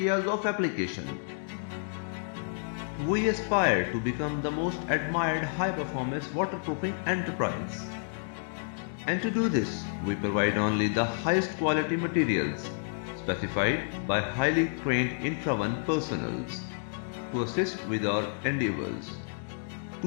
of application. We aspire to become the most admired high-performance waterproofing enterprise. And to do this, we provide only the highest quality materials specified by highly trained infra-1 personals to assist with our endeavors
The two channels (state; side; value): silent; right; digital silence